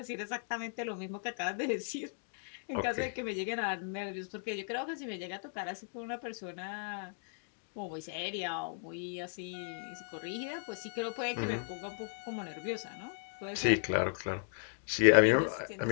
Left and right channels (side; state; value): right; silent; digital silence